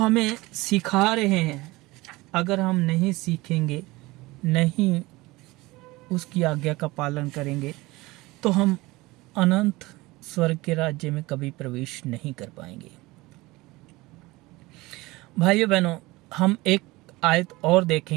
सिखा रहे हैं, अगर हम नहीं सीखेंगे, नहीं उसकी आज्ञा का पालन करेंगे, तो हम अनंत स्वर्ग के राज्य में कभी प्रवेश नहीं कर पाएंगे। भाइयों बहनों, हम एक आयत और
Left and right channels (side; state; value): left; quieter; 21.0 dB